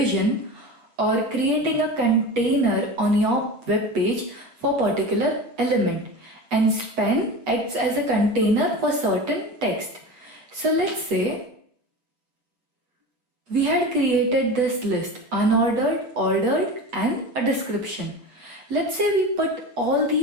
or creating a container on your web page for particular element, and span acts as a container for certain text. So let's say we had created this list, unordered, ordered, and a description. Let's say we put all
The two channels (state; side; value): late; left; 8.1 ms